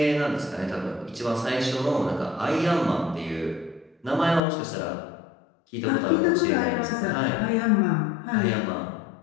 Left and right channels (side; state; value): right; drops out; at 4.4 s